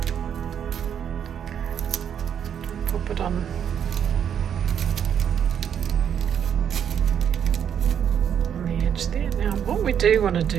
pop it on the edge there. Now what we do want to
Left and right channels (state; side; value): quieter; left; 8.6 dB